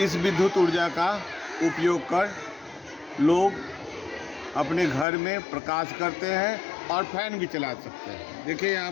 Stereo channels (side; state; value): right; drops out; at 5.1 s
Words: विद्युत ऊर्जा का उपयोग कर लोग अपने घर में प्रकाश करते हैं और फैन भी चला सकते हैं। देखिए यहाँ